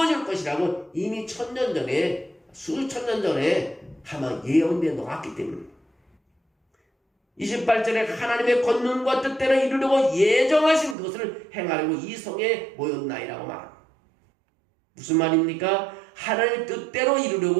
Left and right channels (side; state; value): left; drops out; at 11.0 s